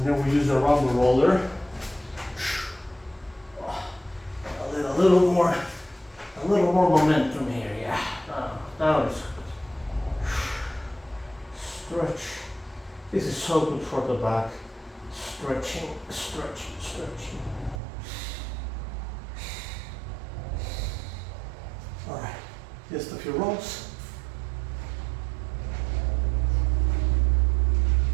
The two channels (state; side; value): drops out; left; at 17.8 s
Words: then we use the rumble roller. A little more momentum here, yeah. Now it's stretch. This is so good for the back. Stretching. All right, just a few rolls.